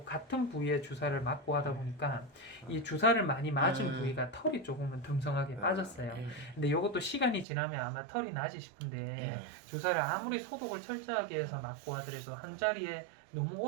같은 부위에 주사를 맞고 하다 보니까 이 주사를 많이 맞은 부위가 털이 조금은 듬성하게 빠졌어요. 근데 이것도 시간이 지나면 아마 털이 나지 싶은데 주사를 아무리 소독을 철저하게 해서 맞고 하더라도 한 자리에 너무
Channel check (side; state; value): left; drops out; at 7.5 s